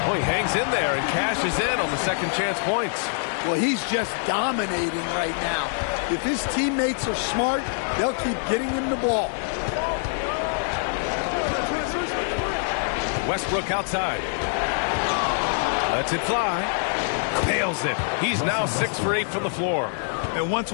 Oh, he hangs in there and cashes in on the second chance points. Well, he's just dominating right now. If his teammates are smart, they'll keep getting him the ball. Westbrook outside. Lets it fly. Nails it. He's now 6 for 8 from the floor. And once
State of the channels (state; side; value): silent; right; digital silence